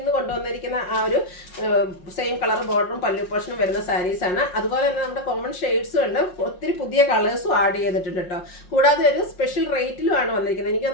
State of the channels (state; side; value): late; right; 5.5 ms